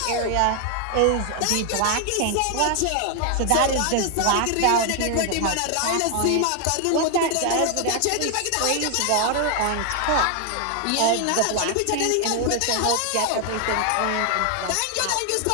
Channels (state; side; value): different; both; correlation 0.00